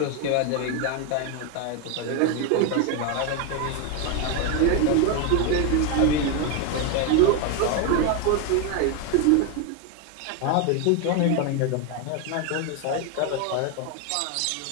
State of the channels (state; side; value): different; both; correlation 0.02